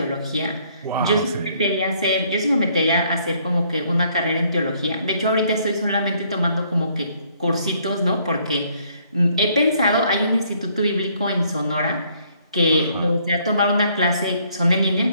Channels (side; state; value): both; inverted; correlation -0.66